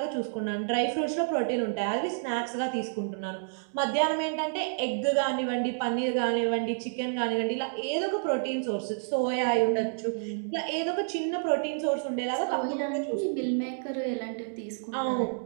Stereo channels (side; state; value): left; silent; digital silence